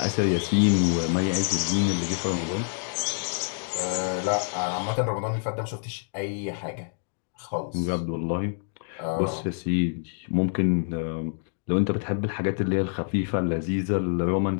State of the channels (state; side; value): silent; right; digital silence